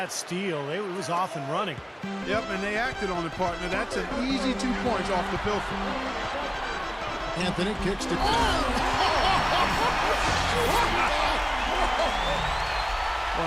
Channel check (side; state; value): both; identical; correlation 1.00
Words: steal, it was off and running. Yep, and they acted on it, partner. That's an easy 2 points off the pilfer. Anthony kicks to...